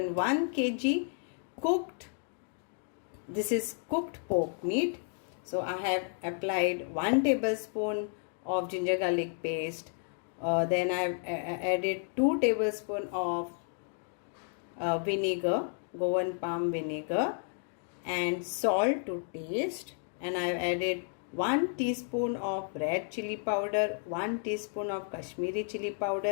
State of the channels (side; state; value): right; silent; 56 dB below the other